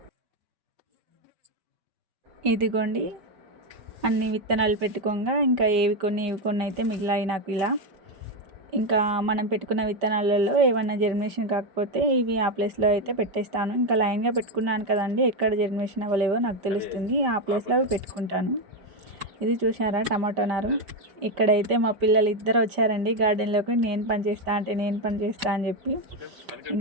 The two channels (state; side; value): late; left; 5.1 ms